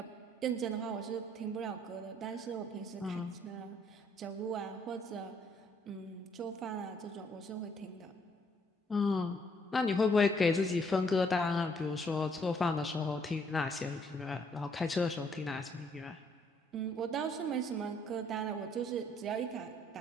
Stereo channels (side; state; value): both; normal; correlation 0.67